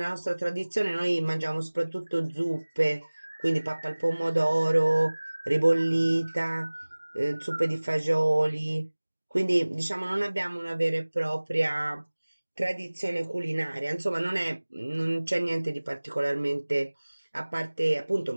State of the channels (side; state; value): both; inverted; correlation -1.00